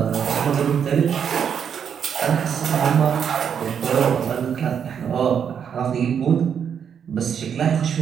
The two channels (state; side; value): quieter; left; 7.7 dB